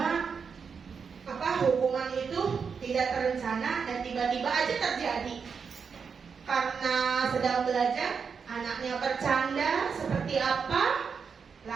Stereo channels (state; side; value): quieter; left; 6.0 dB